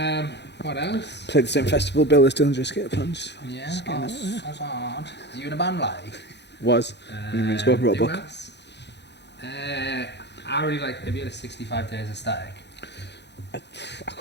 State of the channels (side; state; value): right; late; 0.50 ms